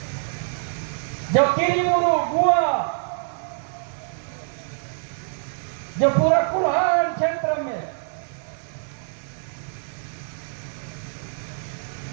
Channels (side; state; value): left; silent; digital silence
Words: जो किरीमुरु गुआ जो पूरा कुल्हाड़ क्षेत्र में